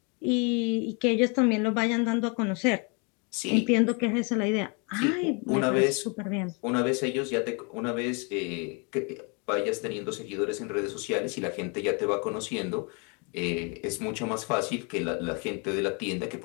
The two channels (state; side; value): quieter; right; 33.9 dB